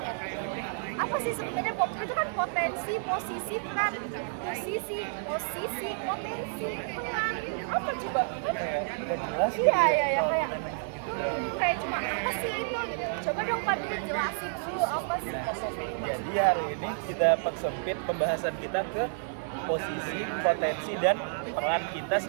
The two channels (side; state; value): left; silent; digital silence